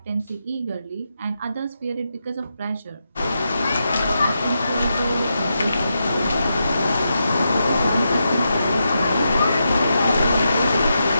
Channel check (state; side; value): inverted; both; correlation -0.85